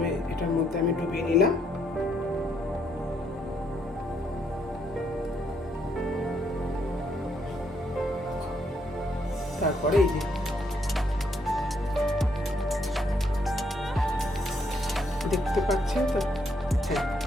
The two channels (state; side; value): normal; both; correlation 0.73